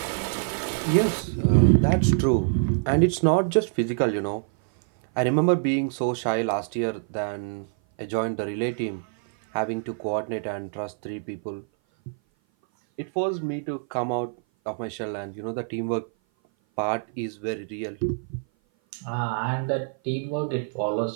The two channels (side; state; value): left; silent; 57 dB below the other